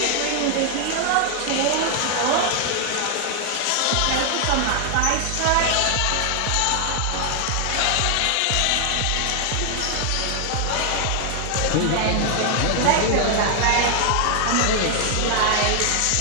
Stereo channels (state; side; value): different; both; correlation 0.00